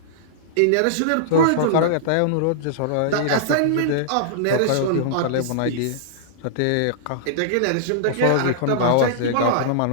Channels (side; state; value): both; different; correlation -0.02